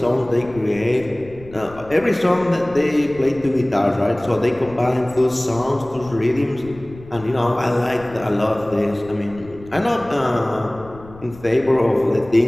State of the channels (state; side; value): noise; left; rumble, 19 dB below the sound